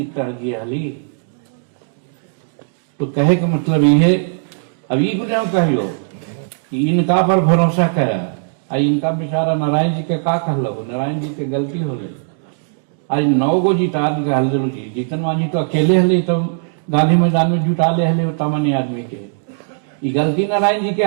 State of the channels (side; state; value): left; silent; digital silence